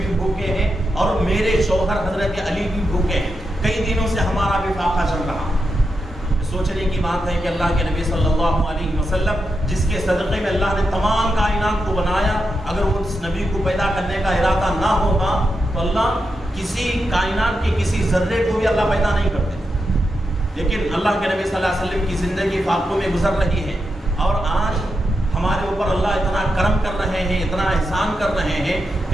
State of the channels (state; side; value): normal; both; correlation 0.86